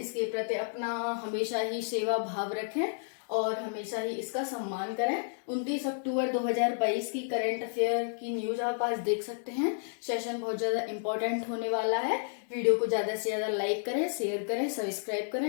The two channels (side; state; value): right; silent; digital silence